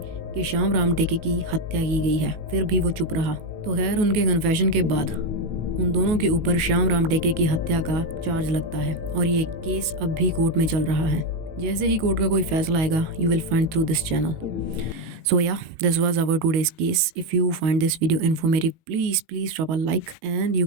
कि श्याम राम टेके की हत्या की गई है, फिर भी वो चुप रहा। तो खैर उनके कन्फेशन के बाद उन दोनों के ऊपर श्याम राम टेके की हत्या का चार्ज लगता है और ये केस अब भी कोर्ट में चल रहा है। जैसे ही कोर्ट का कोई फैसला आएगा you will find through this channel. So yeah, this was our today's case. If you find this video informative, please drop a like and you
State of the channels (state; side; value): late; left; 19 ms